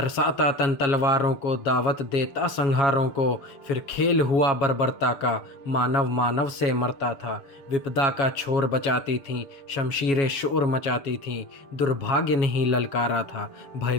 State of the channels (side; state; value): right; late; 7.2 ms